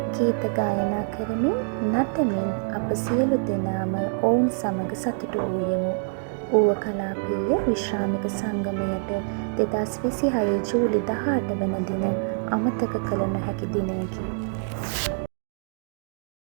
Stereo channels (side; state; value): left; silent; 56 dB below the other